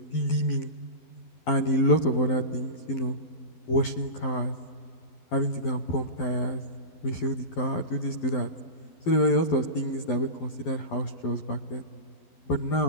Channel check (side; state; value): right; late; 12 ms